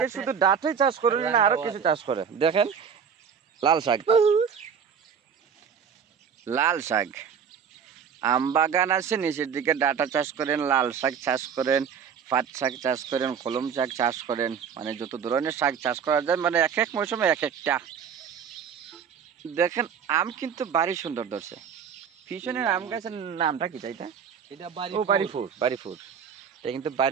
আছে, শুধু ডাঁটাই চাষ করেন না, আরো কিছু চাষ করে। দেখেন লাল শাক, লাল শাক আম বাগান আছে, নিচের দিকে ডাঁটা চাষ করেন, লাল শাক চাষ করেন, পাট শাক চাষ করেন, কলম শাক চাষ করেন। মানে যত ধরনের শাক চাষ করা যায়, মানে এক এক মৌসুমে এক একটা। দেখেন আম কিন্তু বাড়ি সুন্দর ধরছে। পিছনের আম গাছের নামটা কি চাইটা? এটা ও বাড়ি ফুড, বাড়ি ফুড। এটা কিন্তু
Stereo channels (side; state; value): left; quieter; 7.1 dB